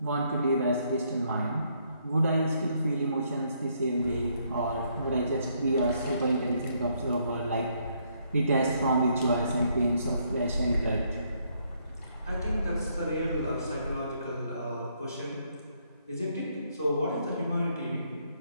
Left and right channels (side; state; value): both; inverted; correlation -0.71